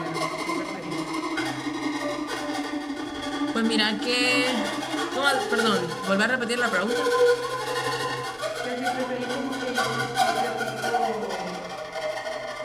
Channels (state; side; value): identical; both; correlation 1.00